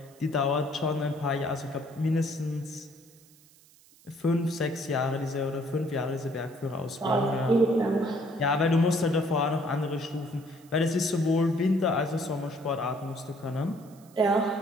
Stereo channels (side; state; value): right; noise; hiss, 27 dB below the sound